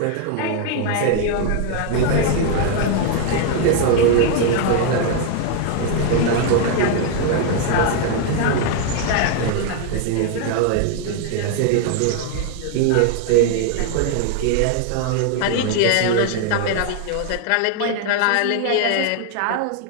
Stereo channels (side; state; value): both; different; correlation 0.00